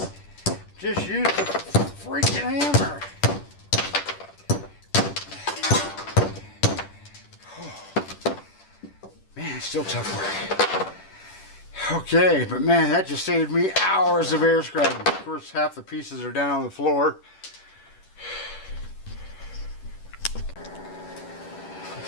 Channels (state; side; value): late; right; 10 ms